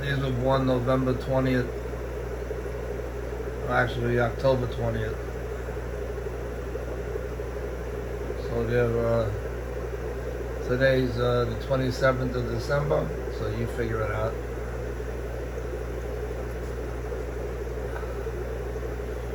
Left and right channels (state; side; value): identical; both; correlation 1.00